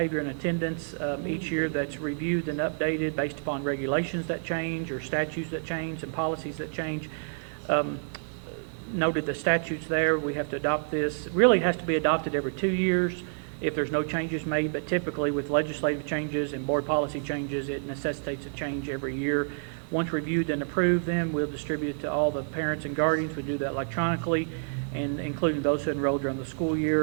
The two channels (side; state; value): left; silent; digital silence